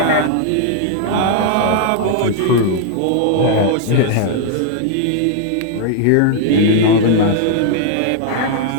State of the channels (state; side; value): different; both; correlation 0.00